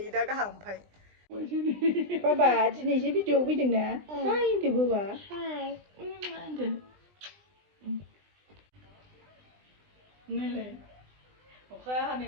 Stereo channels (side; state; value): left; late; 20 ms